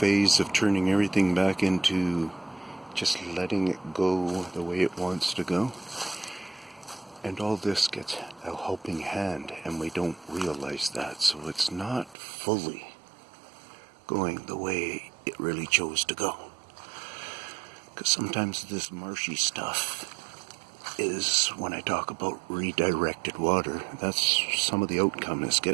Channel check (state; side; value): drops out; left; at 12.2 s